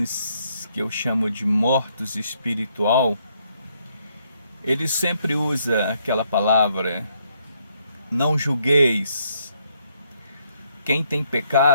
que eu chamo de mortos espiritual, eles sempre usam aquela palavra: não julgueis. Quem tem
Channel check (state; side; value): inverted; both; correlation -0.72